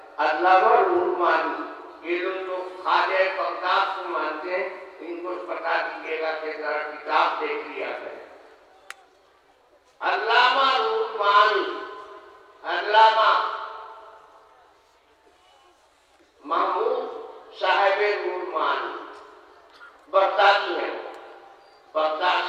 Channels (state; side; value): identical; both; correlation 1.00